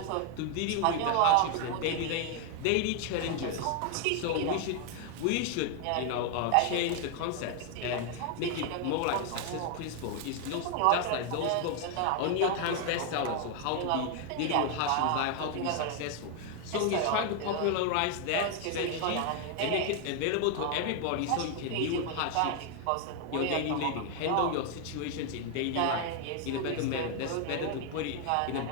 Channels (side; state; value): both; different; correlation 0.01